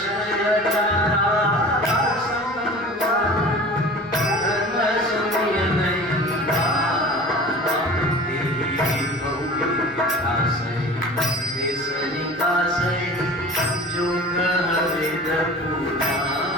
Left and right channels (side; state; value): both; normal; correlation 0.39